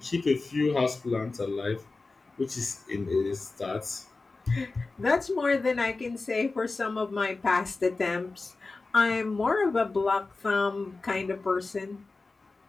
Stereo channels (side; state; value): right; quieter; 3.7 dB